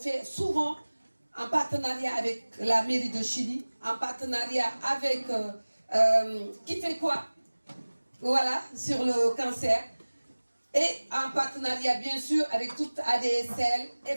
souvent en partenariat avec la mairie de Chili, en partenariat avec qui fait quoi, voilà, sur le cancer, et en partenariat bien sûr avec toute ADSL,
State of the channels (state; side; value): inverted; both; correlation -1.00